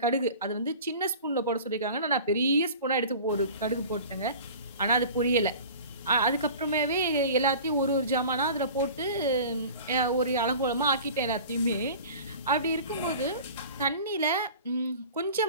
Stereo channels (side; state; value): both; inverted; correlation -0.40